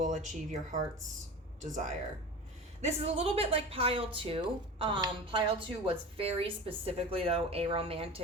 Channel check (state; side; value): normal; both; correlation 0.33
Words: achieve your heart's desire. This is a little bit like Pile 2. Pile 2 was very specifically, though, a